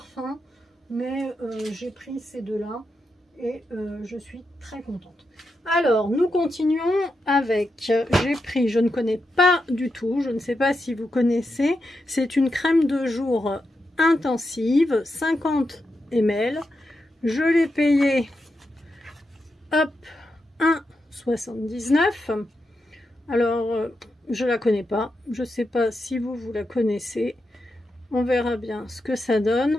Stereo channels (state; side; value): normal; both; correlation 0.86